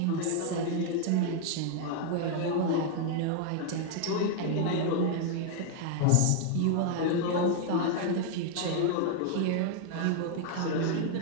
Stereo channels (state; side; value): different; both; correlation 0.00